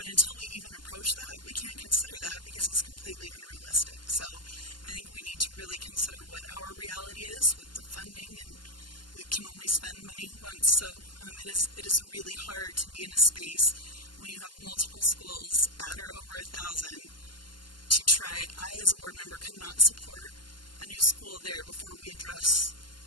until we even approach that, we can't consider that because it's completely unrealistic. So I think we need to really consider what our reality is with the funding and we can only spend money once. So it is really hard to be in a space when you have multiple schools at or over 1,000 to try. I, as a board member, could not support a new school there before we address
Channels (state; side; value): late; right; 0.71 ms